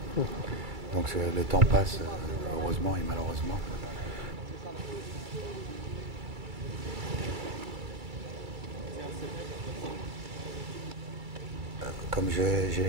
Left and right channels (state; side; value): late; left; 2.3 ms